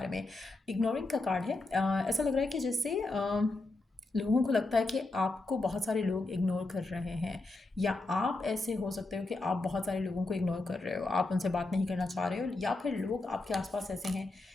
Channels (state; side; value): quieter; right; 3.1 dB